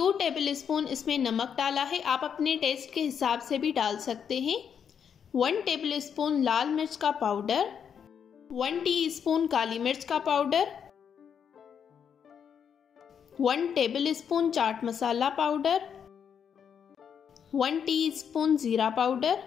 टेबल स्पून इसमें नमक डाला है। आप अपने टेस्ट के हिसाब से भी डाल सकते हैं। 1 टेबल स्पून लाल मिर्च का पाउडर, 1 टीस्पून काली मिर्च का powder, 1 table spoon chaat masala powder, 1 teaspoon जीरा पाउडर,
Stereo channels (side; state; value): right; quieter; 7.6 dB